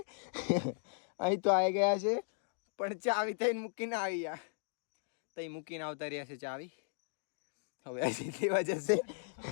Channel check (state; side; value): silent; right; digital silence